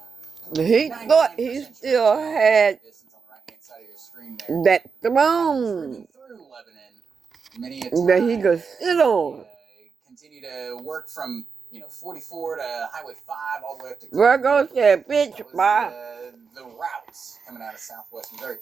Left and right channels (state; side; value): quieter; left; 5.5 dB